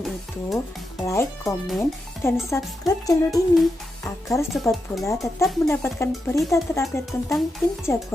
itu, like, komen, dan subscribe channel ini agar Sobat Bola tetap mendapatkan berita terupdate tentang tim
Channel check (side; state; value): both; normal; correlation 0.87